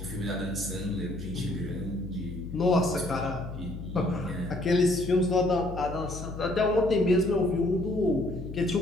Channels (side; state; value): left; noise; hum, 10 dB below the sound